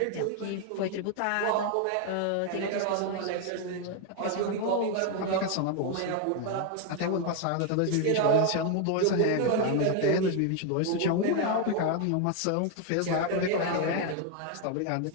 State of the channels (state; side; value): different; both; correlation 0.01